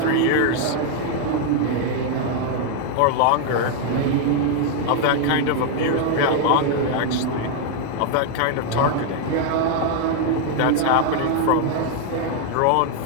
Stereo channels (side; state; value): both; different; correlation 0.00